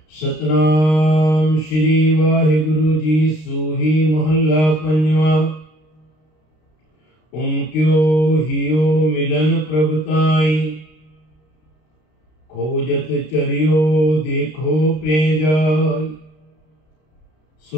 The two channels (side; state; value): right; late; 32 ms